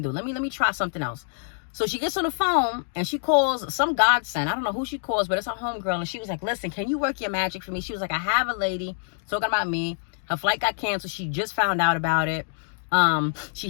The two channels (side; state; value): right; silent; digital silence